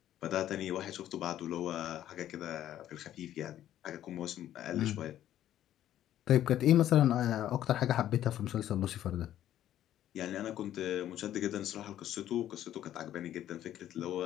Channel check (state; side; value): quieter; right; 12.0 dB